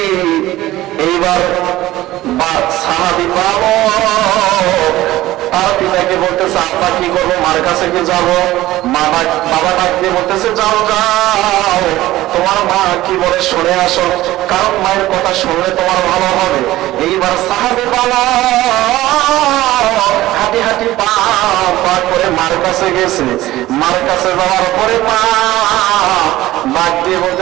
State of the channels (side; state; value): left; quieter; 16.2 dB